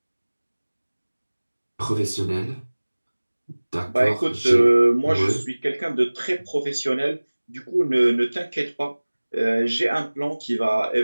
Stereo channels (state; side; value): inverted; both; correlation -1.00